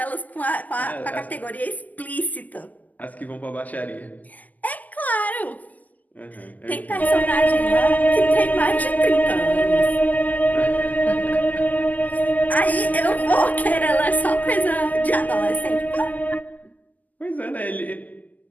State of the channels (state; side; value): late; right; 0.080 ms